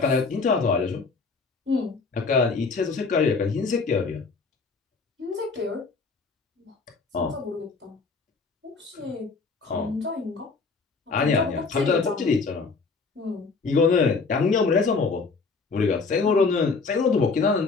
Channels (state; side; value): quieter; right; 4.4 dB